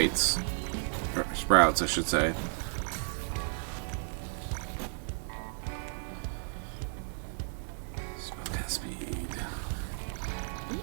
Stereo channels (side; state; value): left; silent; 56 dB below the other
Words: or sprouts, I should say. Spellcast speed.